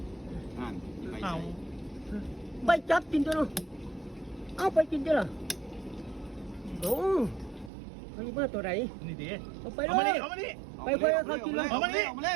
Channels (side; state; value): left; drops out; at 7.7 s